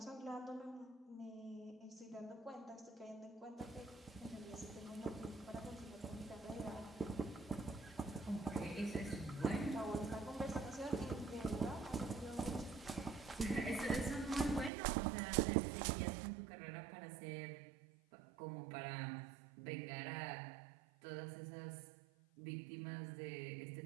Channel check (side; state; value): left; drops out; at 14.7 s